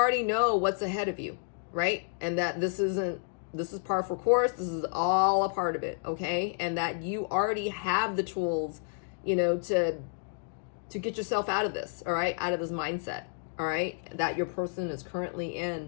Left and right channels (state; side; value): silent; right; digital silence